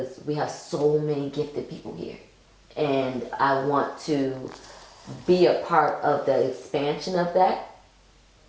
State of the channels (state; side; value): identical; both; correlation 1.00